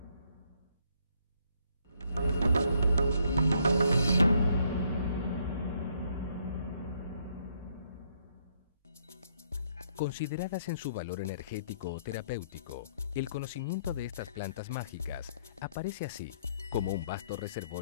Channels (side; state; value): both; inverted; correlation -0.70